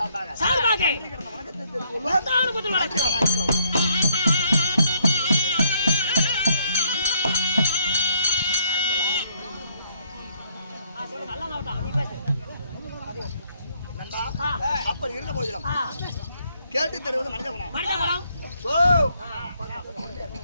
வணக்கத்தை தெரிவித்துள்ளோம். அப்படி இருந்த போதிலும் கேட்டு தருவது மனித குணம்.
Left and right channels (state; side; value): inverted; both; correlation -0.70